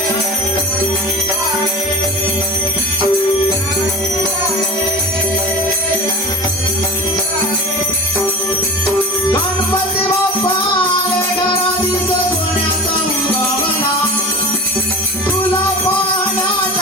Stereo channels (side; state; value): both; normal; correlation 0.32